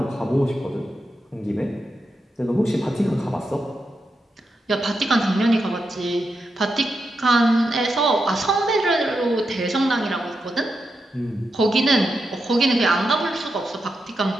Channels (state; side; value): normal; both; correlation 0.86